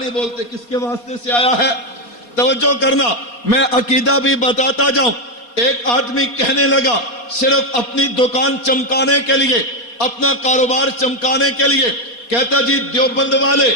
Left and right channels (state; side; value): late; right; 4.2 ms